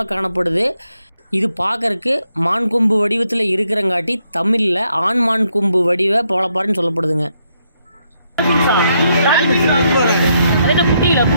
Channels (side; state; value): both; inverted; correlation -0.76